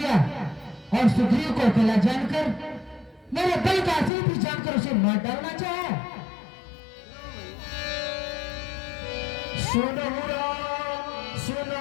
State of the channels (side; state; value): right; drops out; at 4.1 s